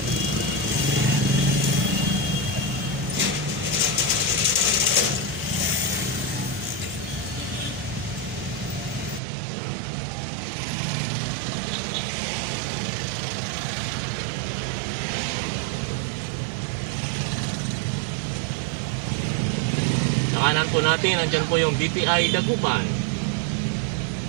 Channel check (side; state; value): left; drops out; at 9.2 s